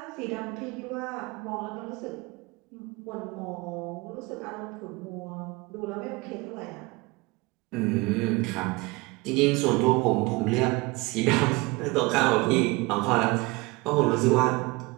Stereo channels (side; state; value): left; quieter; 24.4 dB